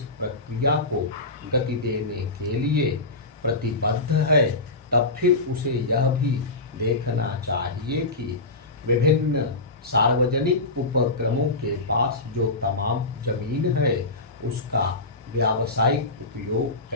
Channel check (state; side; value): quieter; right; 3.0 dB